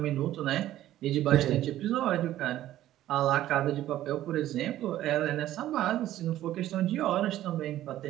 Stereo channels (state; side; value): quieter; left; 13.6 dB